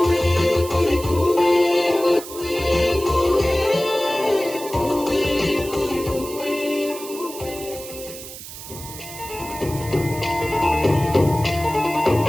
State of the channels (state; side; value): noise; right; hiss, 13 dB below the sound